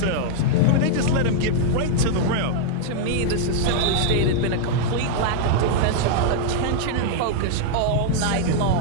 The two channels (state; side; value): different; both; correlation 0.00